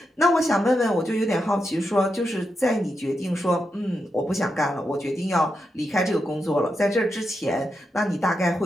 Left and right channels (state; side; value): normal; both; correlation 0.86